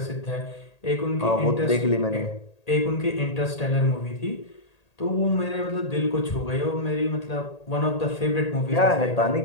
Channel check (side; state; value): right; late; 1.8 ms